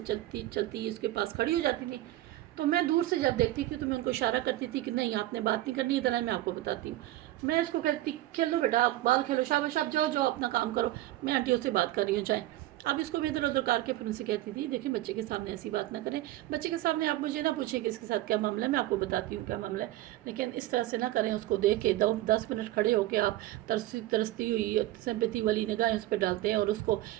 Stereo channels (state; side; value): quieter; left; 15.7 dB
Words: چلتی اس کے پاس کھڑی ہو جاتی تھیں. تو میں دور سے جب دیکھتی تھی تو میں ان کو اشارہ کرتی تھی کہ نہیں آپ نے بات نہیں کرنی, ادھر ہے میں آپ کو بتاتی ہوں. میں اس کو کہتی کھیلو بیٹا, آپ بال کھیلو, شاباش آپ جاؤ اپنا کام کرو, میں آنٹیوں سے بات کر رہی ہوں, جائیں. اب اس کو بھی ادھر ادھر کر کے پھر ان سے کہتی تھی دیکھیں بچے کے سامنے ایسی بات نہ کریں, بچے کے سامنے آپ مجھے نہ پوچھیں کہ اس کے ساتھ کیا معاملہ ہے, میں آپ کو بتاتی ہوں کیا معاملہ ہے, لیکن اس طرح سے نہ کریں. اس کو دیکھ کے 10 منٹ کھڑے ہو کے آپ ترستی ہوئی سمپیتی والی نگاہیں اس پہ ڈالتے ہیں اور اس کو